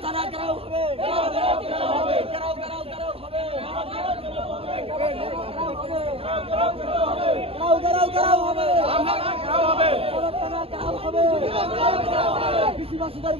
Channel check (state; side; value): late; left; 0.28 ms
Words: থানা গরাও হবে, গরাও গরাও হবে, গরাও গরাও গরাও হবে, গরাও গরাও গরাও হবে, মাসুদের